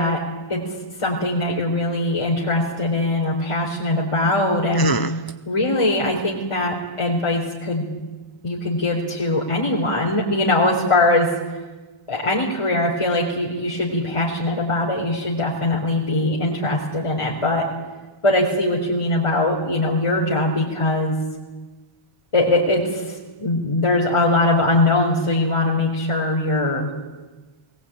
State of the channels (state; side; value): late; right; 1.6 ms